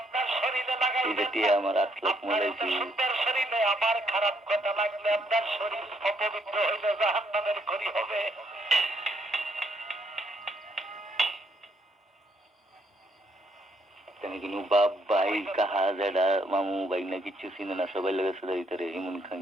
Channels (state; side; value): normal; both; correlation 0.71